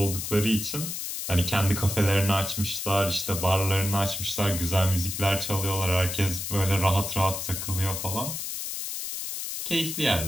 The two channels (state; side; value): noise; left; hiss, 5 dB below the sound